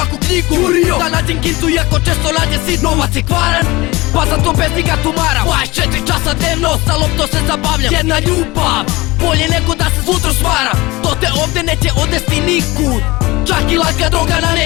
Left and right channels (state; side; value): quieter; right; 21.5 dB